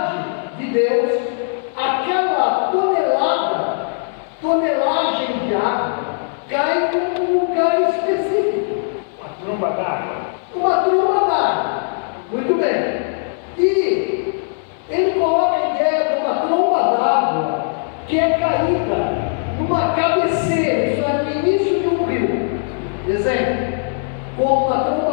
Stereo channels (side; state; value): right; silent; digital silence